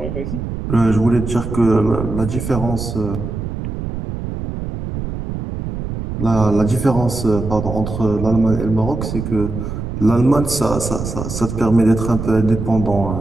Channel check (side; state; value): right; noise; rumble, 6 dB below the sound